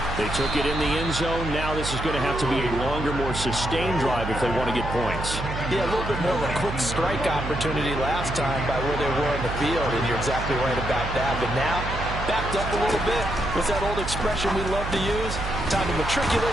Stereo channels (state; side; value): noise; right; hum, 6 dB below the sound